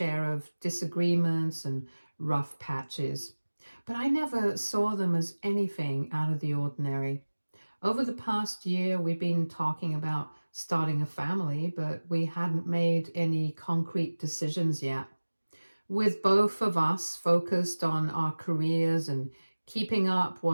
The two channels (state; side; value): inverted; both; correlation -1.00